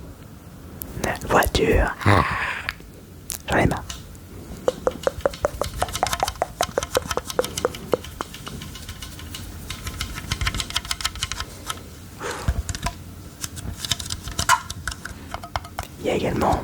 Voiture. J'en ai marre. Il y a également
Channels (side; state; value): both; identical; correlation 1.00